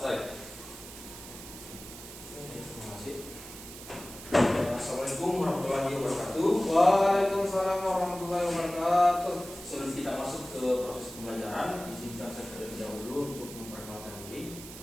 Terima kasih. Assalamualaikum warahmatullahi wabarakatuh. Waalaikumsalam warahmatullahi wabarakatuh. Sebelum kita masuk ke proses pembelajaran, izinkan saya terlebih dahulu untuk memperkenalkan diri.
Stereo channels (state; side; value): noise; right; hiss, 14 dB below the sound